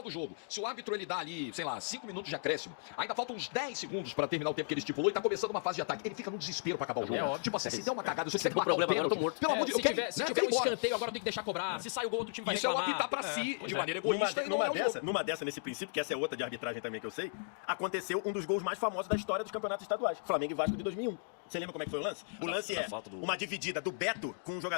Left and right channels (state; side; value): silent; right; digital silence